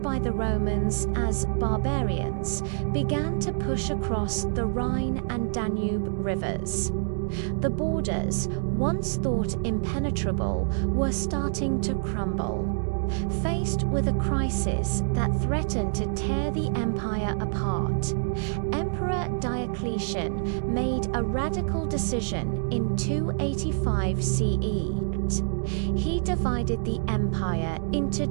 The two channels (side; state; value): left; silent; digital silence